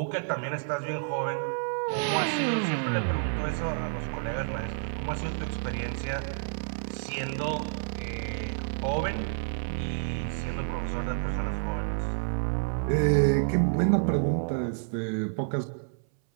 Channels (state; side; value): silent; left; 58 dB below the other